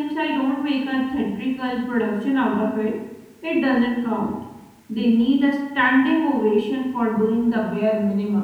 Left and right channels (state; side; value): identical; both; correlation 1.00